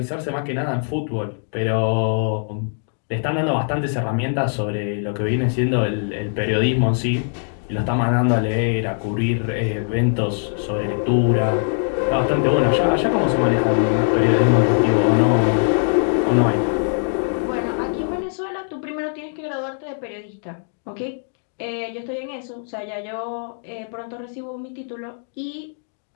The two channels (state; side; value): silent; right; digital silence